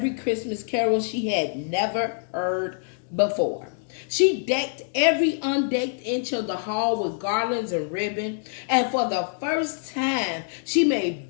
Christmas carol she had never heard before. She decked every undecked inch of the hall with garlands and ribbon, and for the first time, she made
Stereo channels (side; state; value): right; silent; digital silence